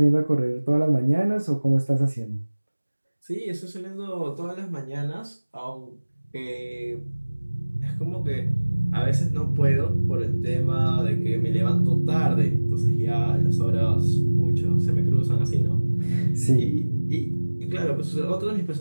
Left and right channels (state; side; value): inverted; both; correlation -1.00